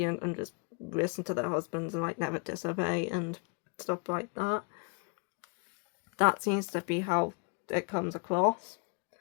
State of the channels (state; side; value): quieter; right; 34.6 dB